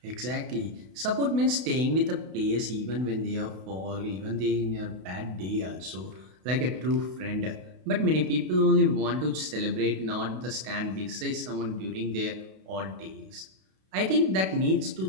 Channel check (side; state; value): left; late; 32 ms